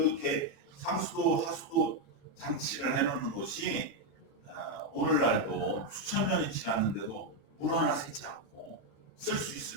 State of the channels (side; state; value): right; late; 36 ms